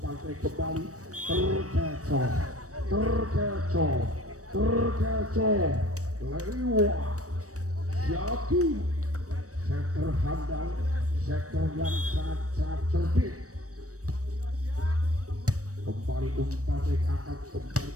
saya kembali terkecoh lewat Yaki sektor handal sektor yang sangat cerdik. Kembali umpan saya akan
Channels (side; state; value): left; late; 0.66 ms